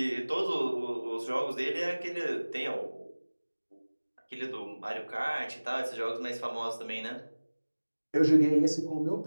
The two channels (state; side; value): inverted; both; correlation -1.00